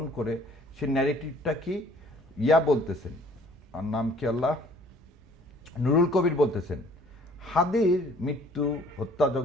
করে সে ন্যারেটিভটা কি বলতেছেন, আর নাম কি আল্লাহ, নুরুল কবির বলতেছেন হাদির মৃত্যু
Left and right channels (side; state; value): both; normal; correlation 0.56